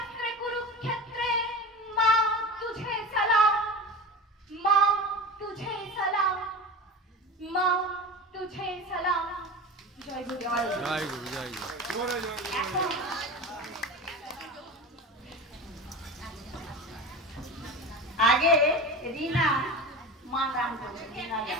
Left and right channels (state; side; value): normal; both; correlation 0.30